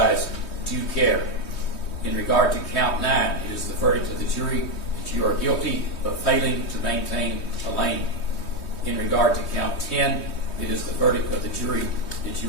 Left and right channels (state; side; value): late; right; 3.2 ms